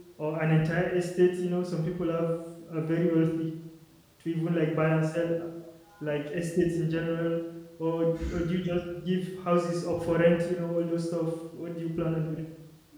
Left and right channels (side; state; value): both; identical; correlation 1.00